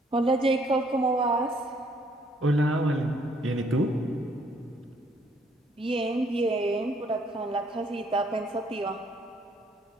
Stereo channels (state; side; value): normal; both; correlation 0.66